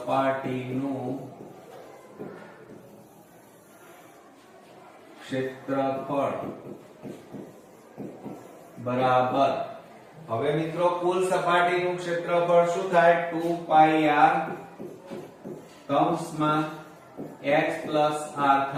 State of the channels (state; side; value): identical; both; correlation 1.00